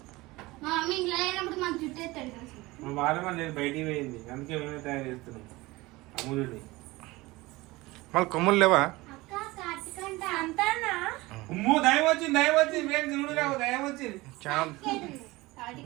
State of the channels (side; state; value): left; quieter; 20.9 dB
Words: మా వారం లేదు, బయటికి పోయింది, అందుకే మేమే తయారు చేస్తున్నాం అమూలుని. మళ్ళీ కొమ్ములు లేవా? అమ్మో దయం వచ్చింది, దయం వచ్చింది ఫ్రెండ్స్, చూడు రావు, దయం వచ్చింది.